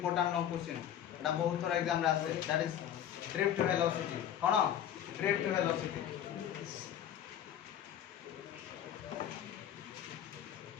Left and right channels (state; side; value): quieter; right; 10.3 dB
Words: लॉन्ग क्वेश्चन एटा बहुत थोड़ा एग्जाम रे आसे that is drift velocity. Cone drift velocity